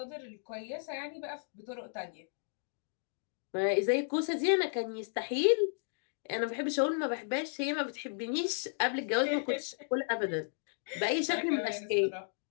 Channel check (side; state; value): right; silent; digital silence